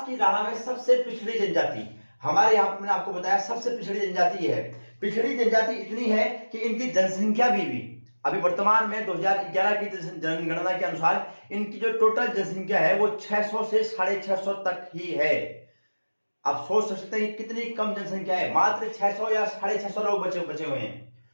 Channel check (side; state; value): both; inverted; correlation -1.00